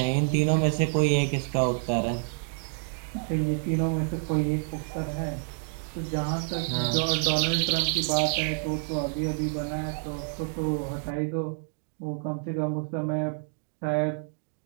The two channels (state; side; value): silent; left; digital silence